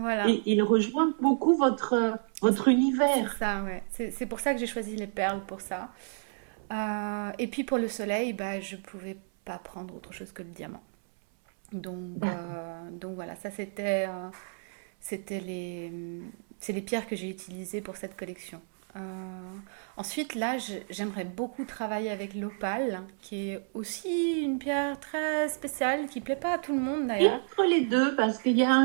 Et il rejoint beaucoup votre C'est univers. ça, ouais. C'est pour ça que j'ai choisi les perles pour ça. Et puis pour le soleil, bah, je pouvais pas prendre autre chose que le diamant. D'accord. Donc voilà, ça c'était c'est les pierres que j'ai utilisées pour cette collection. Euh, Ensuite, là, j'aimerais beaucoup travailler avec l'opale, qui est aussi une pierre très spéciale, qui plaît pas à tout le monde Et d'ailleurs. entre les deux, parce qu'il y a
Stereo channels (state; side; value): silent; left; 57 dB below the other